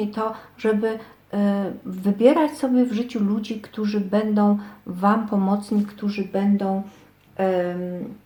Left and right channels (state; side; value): identical; both; correlation 1.00